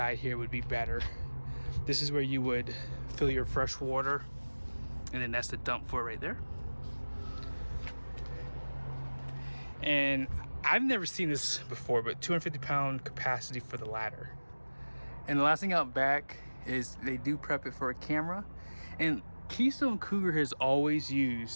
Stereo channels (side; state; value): both; inverted; correlation -1.00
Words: here would be better. This is where you would fill your fresh water, and then that's the dump for it right there. And I've never seen this before, but 250-pound capacity for the ladder. And the last thing out back is they do prep it for a camera. And Keystone Cougar has always